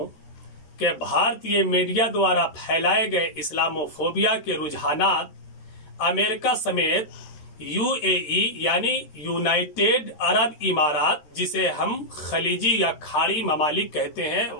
कि भारतीय मीडिया द्वारा फैलाए गए इस्लामोफोबिया के रुझानात अमेरिका समेत यूएई यानी यूनाइटेड अरब इमारात, जिसे हम खलीजी या खाड़ी ममालिक कहते हैं,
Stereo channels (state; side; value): late; right; 13 ms